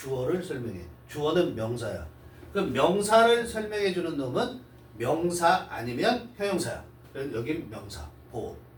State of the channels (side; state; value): both; identical; correlation 1.00